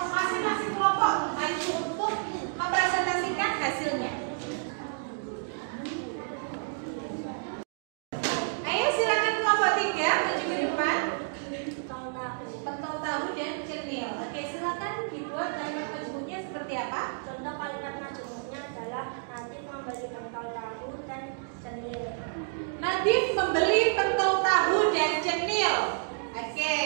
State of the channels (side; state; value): left; silent; digital silence